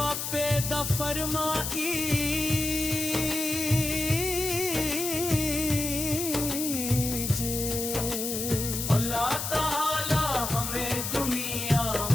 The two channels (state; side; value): noise; left; hiss, 3 dB below the sound